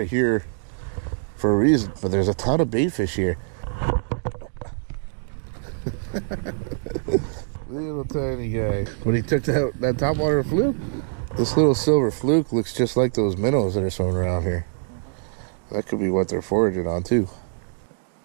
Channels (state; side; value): silent; left; digital silence